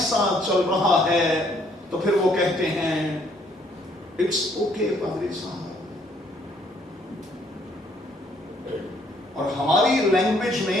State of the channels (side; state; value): both; normal; correlation 0.65